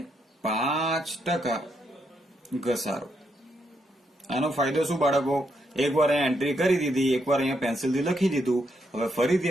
5% ઘસારો. આનો ફાયદો શું બાળકો? એકવાર અહીંયા એન્ટ્રી કરી દીધી, એકવાર અહીંયા પેન્સિલથી લખી દીધું. હવે ફરીથી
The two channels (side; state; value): both; normal; correlation 0.78